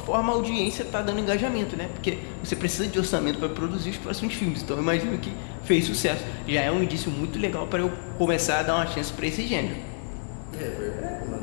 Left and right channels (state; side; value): silent; right; digital silence